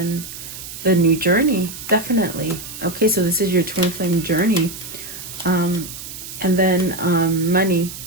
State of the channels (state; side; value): noise; right; hiss, 11 dB below the sound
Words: the new journey, definitely. Okay, so this is your twin flame journey. And then money.